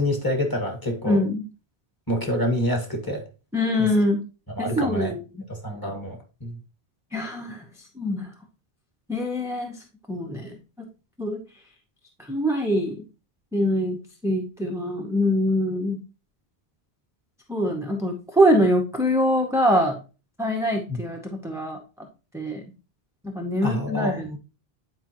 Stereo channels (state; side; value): normal; both; correlation 0.54